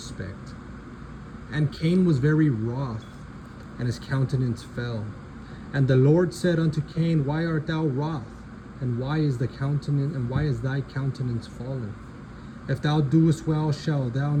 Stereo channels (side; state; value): both; identical; correlation 1.00